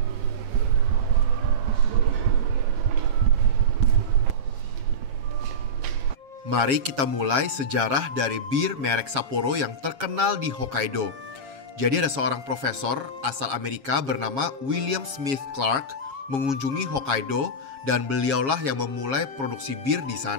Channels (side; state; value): left; late; 7.3 ms